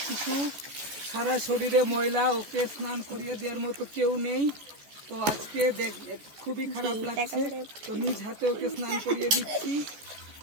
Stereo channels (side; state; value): left; late; 14 ms